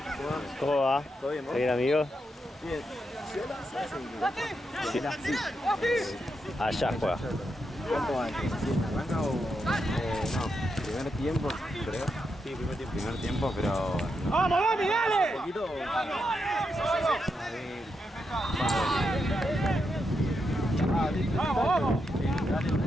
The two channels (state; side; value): normal; both; correlation 0.84